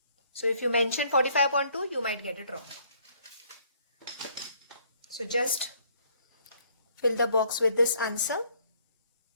So if you mention 45 upon 2, you might get it wrong. So just fill the box with this answer.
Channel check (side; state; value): both; inverted; correlation -0.63